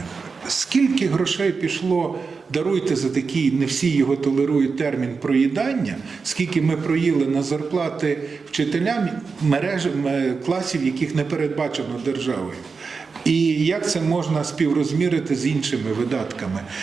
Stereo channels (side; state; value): left; quieter; 4.9 dB